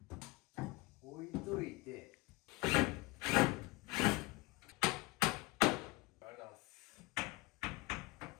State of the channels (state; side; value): quieter; right; 21.9 dB